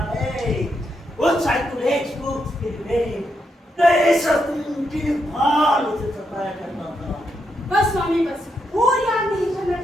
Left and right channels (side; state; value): both; normal; correlation 0.81